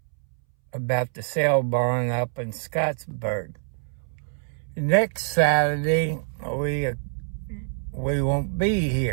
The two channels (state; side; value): silent; left; 61 dB below the other